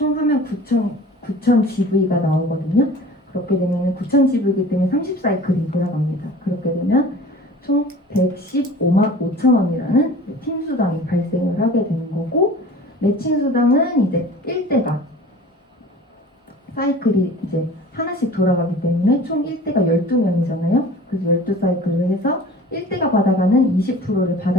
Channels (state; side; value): normal; both; correlation 0.43